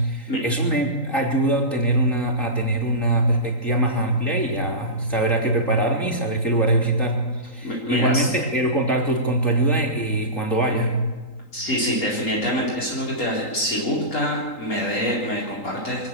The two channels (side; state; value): right; late; 3.8 ms